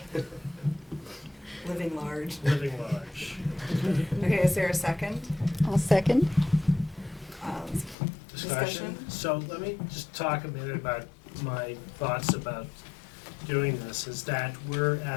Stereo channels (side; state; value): right; drops out; at 8.0 s